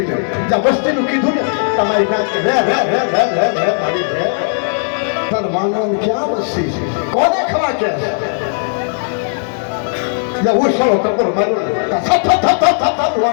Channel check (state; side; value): silent; right; 69 dB below the other